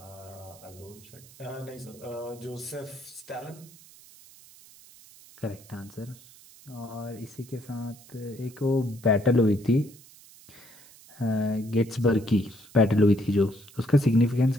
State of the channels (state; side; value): noise; right; hiss, 22 dB below the sound